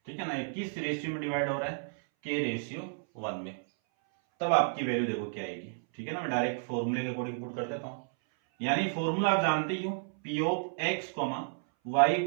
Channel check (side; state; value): left; silent; 57 dB below the other